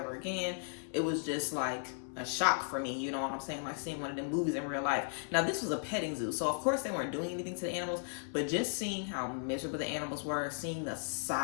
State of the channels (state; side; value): silent; right; digital silence